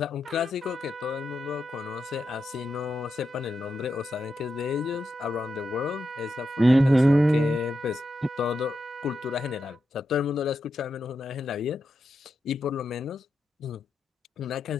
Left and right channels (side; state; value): both; normal; correlation 0.86